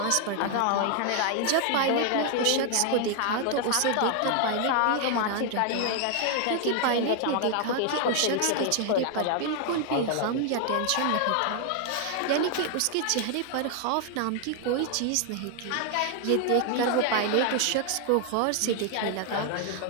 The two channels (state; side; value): different; both; correlation 0.00